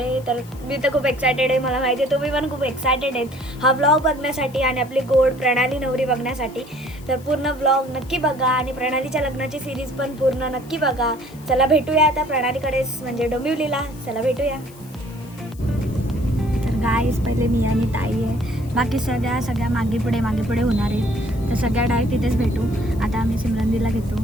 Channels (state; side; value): noise; left; hiss, 24 dB below the sound